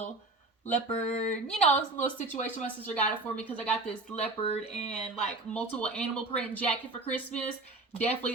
leopard, it's a little situation. My sister got it for me because I got this leopard and like multiple animal print jacket for Christmas. Definitely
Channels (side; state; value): left; quieter; 3.2 dB